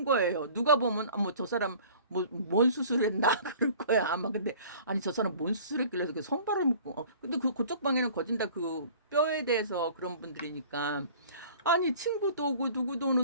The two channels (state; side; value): inverted; both; correlation -0.48